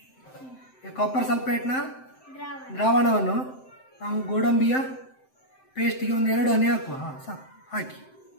ಕಾಪರ್ ಸಲ್ಫೇಟ್ನ ದ್ರಾವಣವನ್ನು ನಾವು ಗೋಡಂಬಿಯ ಪೇಸ್ಟ್ಗೆ ಒಂದು 2 ಹನಿ ಹಾಕುವ. ಸಾಕು. ಹಾಕಿ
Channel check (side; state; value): right; late; 7.7 ms